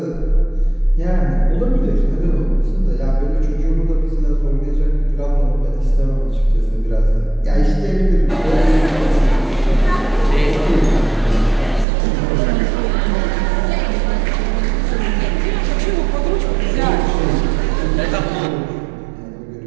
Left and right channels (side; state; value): left; drops out; at 11.9 s